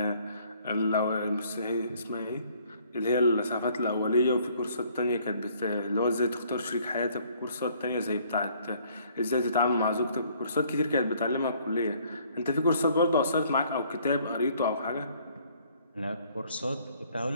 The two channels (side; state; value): both; inverted; correlation -0.61